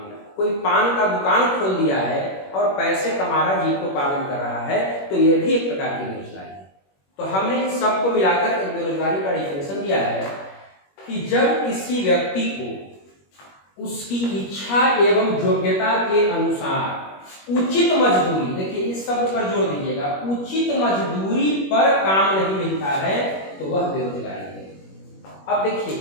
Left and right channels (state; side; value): late; right; 21 ms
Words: कोई पान का दुकान खोल दिया है और पैसे कमा रहा, जीविकोपार्जन कर रहा है, तो यह भी एक प्रकार की बेरोजगारी है। तो हमने इन सबको मिलाकर एक बेरोजगारी का डेफिनेशन दिया है कि जब किसी व्यक्ति को उसकी इच्छा एवं योग्यता के अनुसार उचित मजदूरी, देखिए इस शब्द पर जोर दीजिएगा, उचित मजदूरी पर काम नहीं मिलता है, तो वह बेरोजगारी है। अब देखिए,